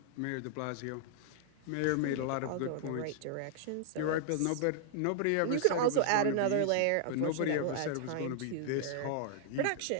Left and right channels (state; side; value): different; both; correlation -0.01